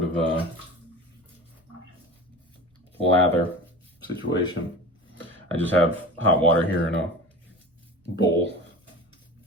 of a lather situation. I just have hot water here in a bowl.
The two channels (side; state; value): both; normal; correlation 0.34